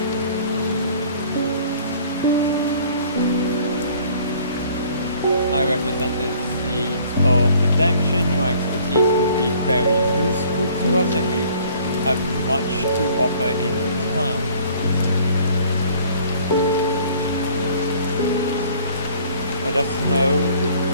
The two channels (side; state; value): both; inverted; correlation -0.55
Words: I represent the seeds of redemption. Your expertise will be very useful to us, and we have much to offer in return. Let us know.